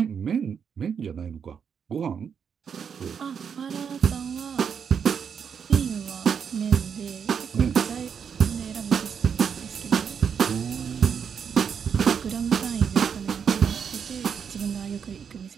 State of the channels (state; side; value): quieter; left; 7.1 dB